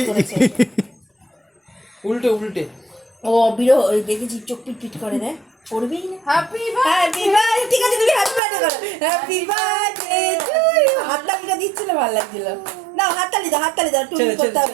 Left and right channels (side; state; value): left; drops out; at 8.4 s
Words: উল্টে উল্টে ও বিরো দেখেছি চোখ পিট পিট করে দেয় করবেই না। হ্যাপি বার্থডে ঠিক আছে তুমি হ্যাপি বার্থডে করো। Happy birthday to you. হাততালিটা দিচ্ছিল ভালো লাগছিল। না হাততালি দাও টুন করতে